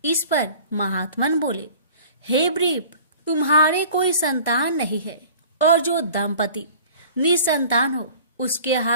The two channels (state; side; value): inverted; both; correlation -0.45